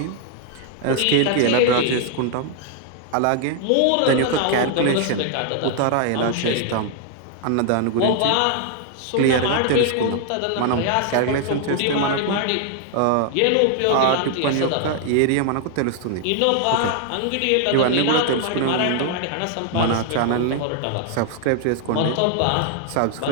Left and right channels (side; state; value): both; different; correlation 0.00